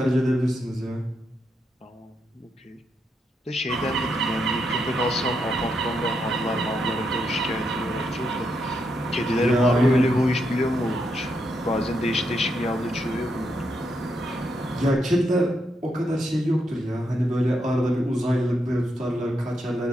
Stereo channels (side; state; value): both; normal; correlation 0.81